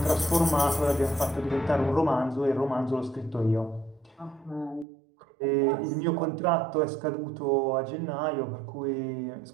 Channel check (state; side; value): drops out; left; at 4.9 s